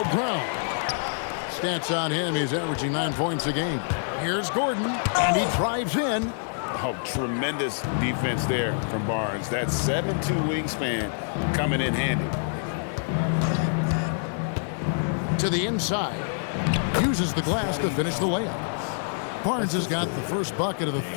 Brown. Stats on him. He's averaging 9 points a game. Here's Gordon. And he drives in. Oh, tremendous defense there from Barnes. That 7'2" wingspan coming in handy. To the inside. Uses the glass to finish the layup. Barnes has got the first bucket of the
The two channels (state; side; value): silent; right; 61 dB below the other